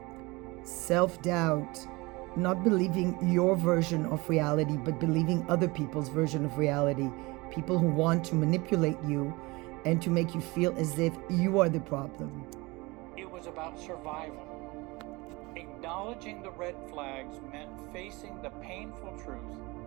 Self-doubt. Not believing your version of reality, but believing other people's version of reality. People who want to manipulate you and to make you feel as if you are the problem. It was about survival. Acknowledging the red flags meant facing the painful truth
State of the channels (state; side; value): quieter; left; 23.7 dB